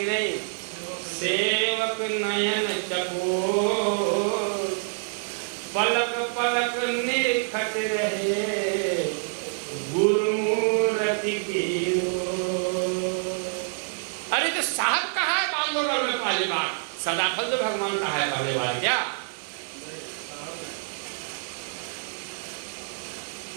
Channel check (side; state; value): left; silent; 59 dB below the other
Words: नहीं? सेवक नयन चकोर, पलक पलक निरखत रहे गुरु मूर्ति की। अरे तो साहब कहा है बांधोगढ़ में पहली बार, सदाफल तो भगवान कहा है पहली बार क्या?